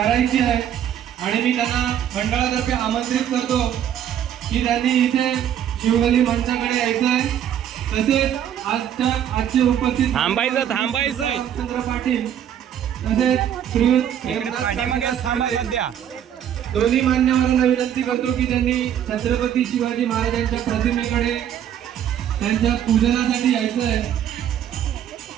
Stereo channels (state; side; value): quieter; left; 9.9 dB